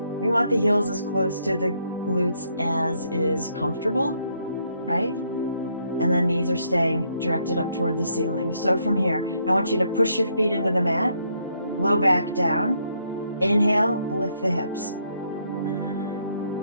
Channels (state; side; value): inverted; both; correlation -0.73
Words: want the heels as close to the glutes as is comfortable, right? And then knees are staying directed up toward the ceiling. So from here, I want you to push your feet into the mat, low back down. Inhale, lift the hips.